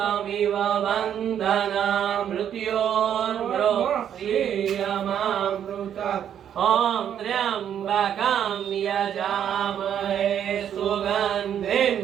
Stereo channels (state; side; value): quieter; left; 9.4 dB